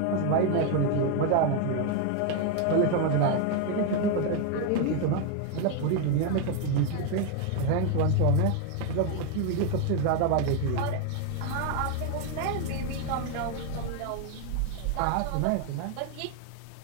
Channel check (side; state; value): both; different; correlation 0.01